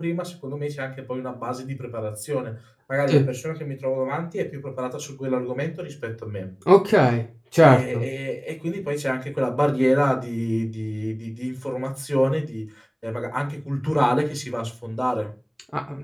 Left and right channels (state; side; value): identical; both; correlation 1.00